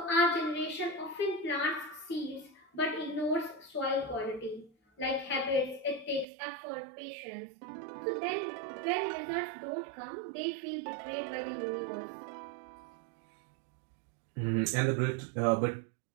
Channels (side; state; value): left; drops out; at 6.2 s